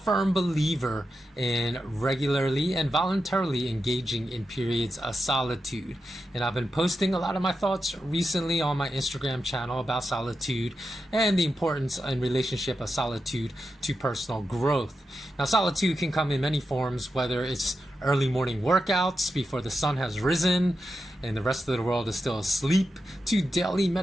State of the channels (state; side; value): normal; both; correlation 0.88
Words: believer in regularly and voluntarily engaging in periods of solitude. And I've been posting a lot of my thoughts recently on my Instagram channel about solitude and the importance and relationship of solitude to personal growth. Now, solitude can come in many forms, whether it's early morning workouts before the sun has risen and the rest of the world is still asleep, to daily